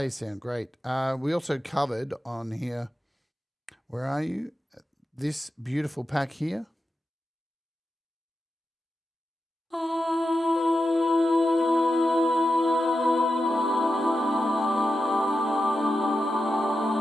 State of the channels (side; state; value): both; normal; correlation 0.90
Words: sound great. We also covered on here, where are you? This beautiful pack here.